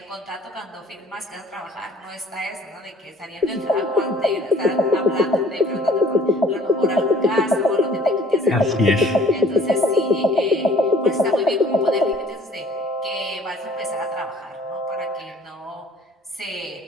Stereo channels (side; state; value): both; normal; correlation 0.53